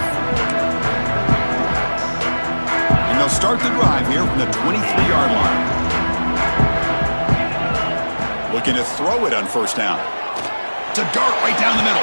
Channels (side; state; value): both; inverted; correlation -1.00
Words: And they'll start the drive here from the 23-yard line. Looking to throw it on first down. It's a dart right down the middle.